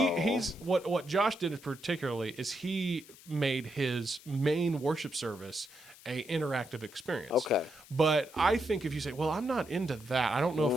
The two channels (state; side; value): noise; left; hiss, 21 dB below the sound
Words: what Josh did particularly is he made his main worship service a interactive experience. But I think if you say, well, I'm not into that, I don't know